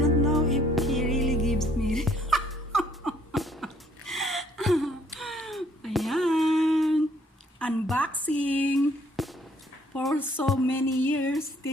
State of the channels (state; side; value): normal; both; correlation 0.63